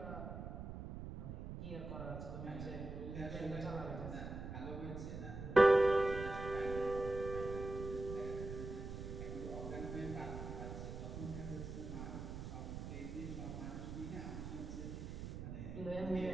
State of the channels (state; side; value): noise; right; rumble, 7 dB below the sound